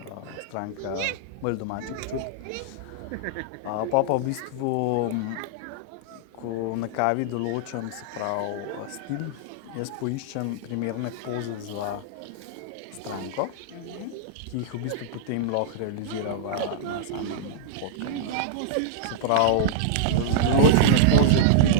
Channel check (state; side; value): different; both; correlation -0.02